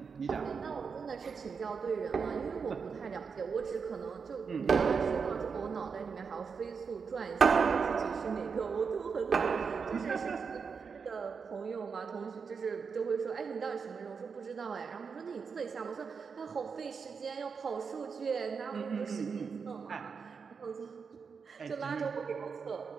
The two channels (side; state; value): left; quieter; 5.7 dB